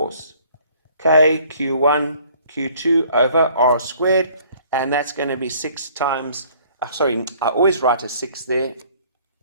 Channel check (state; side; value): inverted; both; correlation -0.57